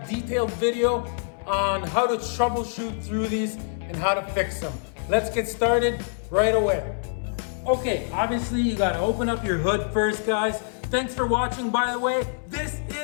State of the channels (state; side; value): silent; right; 61 dB below the other